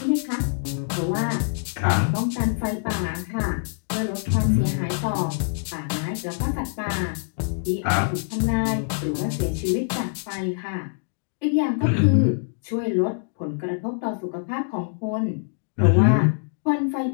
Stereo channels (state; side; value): silent; right; digital silence